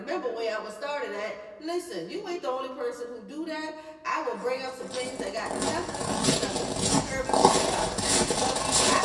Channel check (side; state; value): both; identical; correlation 1.00